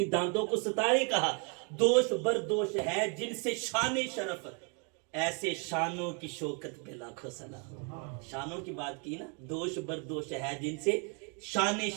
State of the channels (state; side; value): quieter; left; 36.8 dB